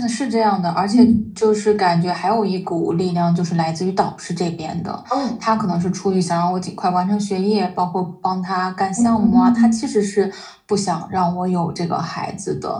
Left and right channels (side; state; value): both; identical; correlation 1.00